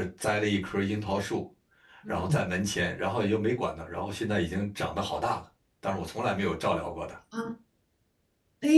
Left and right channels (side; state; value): both; identical; correlation 1.00